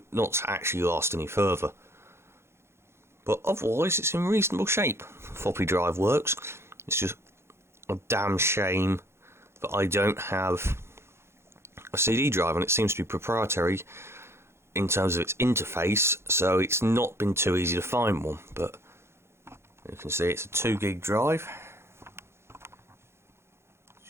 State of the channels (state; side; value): late; left; 0.12 ms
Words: not to actually last any further. But otherwise it's in reasonable shape. Floppy drive works. It's just a damn shame that I don't have a CD drive, and it seems to be proprietary in terms of its interface, so it's not been too easy to find one. But you can see it's a 2 gig drive.